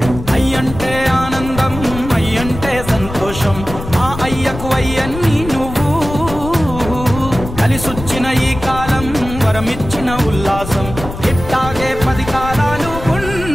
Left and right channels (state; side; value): noise; left; rumble, 10 dB below the sound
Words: అయ్యంటే ఆనందం, అయ్యంటే సంతోషం, మా అయ్యకు అయ్యన్ని నువ్వు. కలిసొచ్చిన ఈ కాలం వరమిచ్చిన ఉల్లాసం, ఇట్టాగే 10 కాలాలు